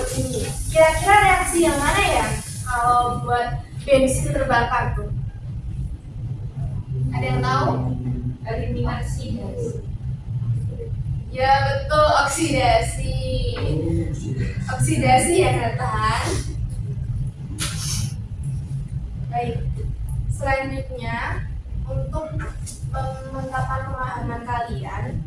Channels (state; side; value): identical; both; correlation 1.00